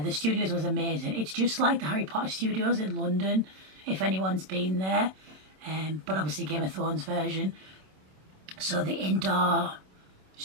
studios was amazing. It's just like the Harry Potter studios in London, if anyone's been there, but obviously Game of Thrones version. So the indoor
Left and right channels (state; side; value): late; left; 26 ms